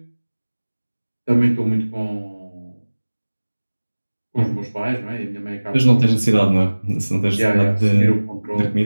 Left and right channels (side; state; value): both; inverted; correlation -1.00